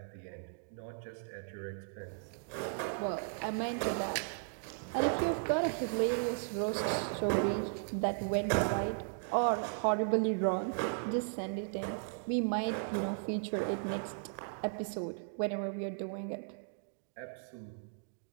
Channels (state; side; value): silent; left; digital silence